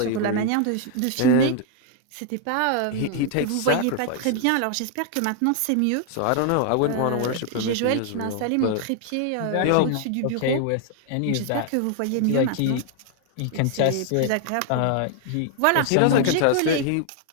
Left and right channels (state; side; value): different; both; correlation 0.00